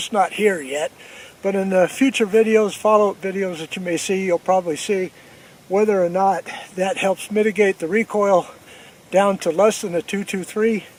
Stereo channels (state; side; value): identical; both; correlation 1.00